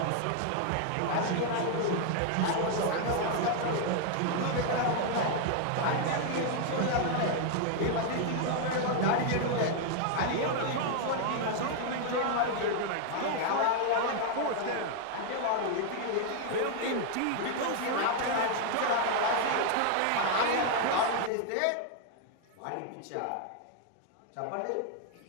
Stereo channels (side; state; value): both; different; correlation 0.00